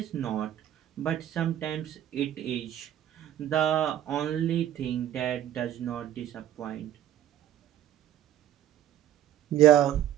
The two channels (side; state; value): left; quieter; 11.7 dB